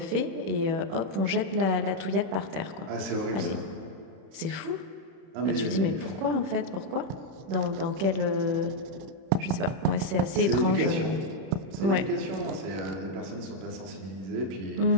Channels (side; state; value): left; late; 31 ms